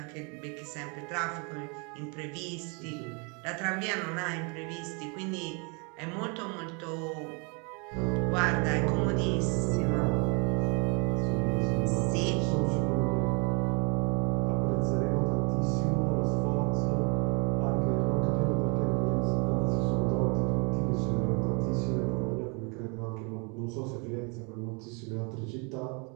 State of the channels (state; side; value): quieter; left; 33.3 dB